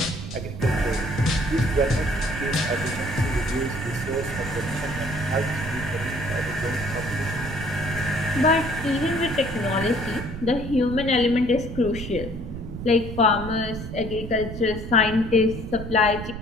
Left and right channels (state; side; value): noise; right; rumble, 8 dB below the sound